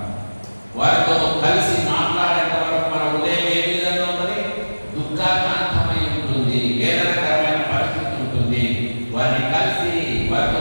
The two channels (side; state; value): both; inverted; correlation -1.00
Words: వారితో కలిసి మాట్లాడేంత వరకు మన హృదయం ఏ విధంగా ఉన్నది? దుఃఖాకాంతమై ఉంటుంది, వేదనకరమైన పరిస్థితి ఉంటుంది. వారిని కలిసి